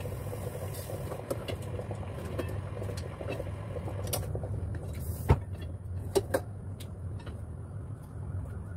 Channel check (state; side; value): identical; both; correlation 1.00